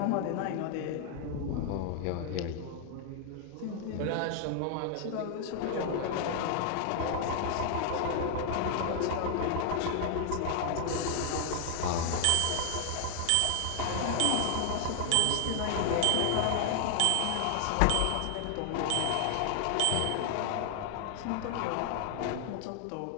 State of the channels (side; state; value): both; different; correlation 0.00